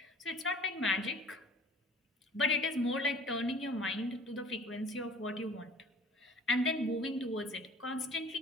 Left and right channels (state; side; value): normal; both; correlation 0.48